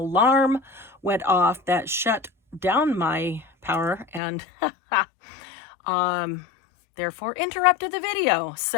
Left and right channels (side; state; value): right; drops out; at 4.2 s